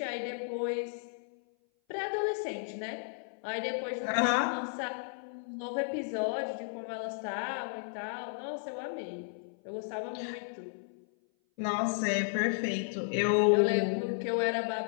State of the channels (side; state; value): right; silent; 55 dB below the other